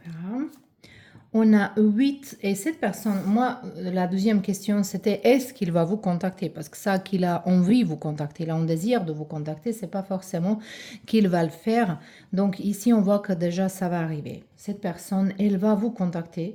On a 8 et cette personne, moi, la deuxième question, c'était est-ce qu'il va vous contacter? Parce que ça, qu'il a envie de vous contacter, il a un désir de vous contacter, c'est pas forcément qu'il va le faire. Donc ici, on voit que déjà, ça va arriver. Cette personne, elle va vous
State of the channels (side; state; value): both; identical; correlation 1.00